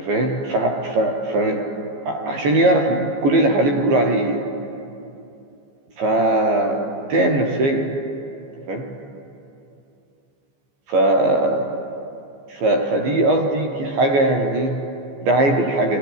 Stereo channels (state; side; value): late; left; 15 ms